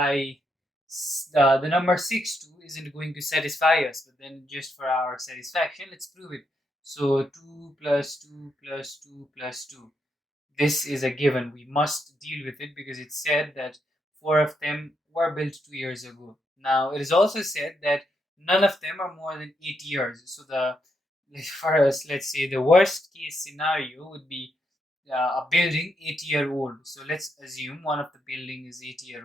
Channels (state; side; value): normal; both; correlation 0.80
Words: the number 6 2 isn't going to satisfy us, but then just for our satisfaction, let's prove it. So 2 plus 2 plus 2 plus 2. This is a given. We must deal with it because it said that four of them were built 2 years ago. Now, it is also said that none of them are more than 8 years. So for us, let's say the worst case scenario would be a building 80-year old. So let's assume one of the building is 80-year